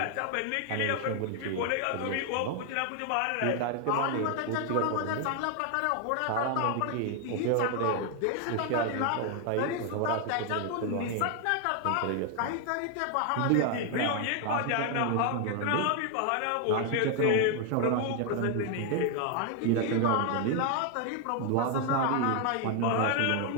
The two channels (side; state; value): both; different; correlation 0.00